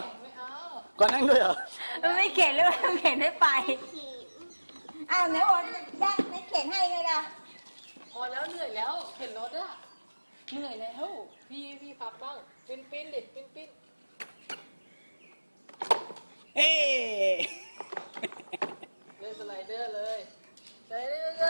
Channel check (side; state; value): both; inverted; correlation -1.00